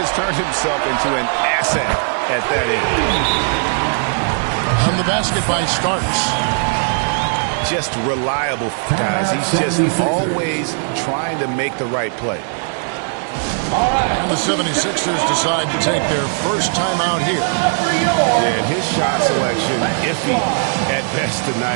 turned himself into an asset at that end. On the basket by Starks. Just reliable, guys. He's just always trying to make the right play. And the 76ers decide to take their first time out here. And his shot selection, iffy at best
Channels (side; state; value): left; silent; 63 dB below the other